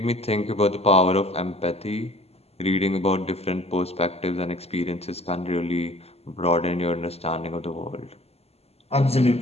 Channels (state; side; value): late; right; 0.30 ms